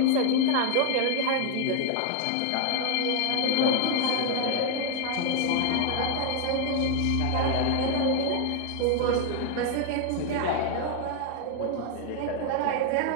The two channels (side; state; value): both; different; correlation 0.00